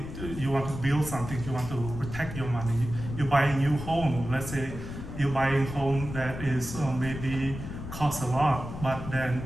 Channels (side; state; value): left; noise; rumble, 9 dB below the sound